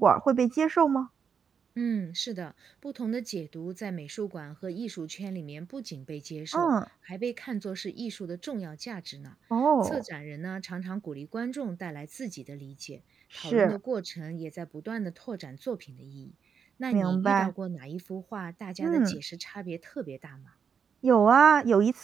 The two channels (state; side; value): quieter; left; 6.7 dB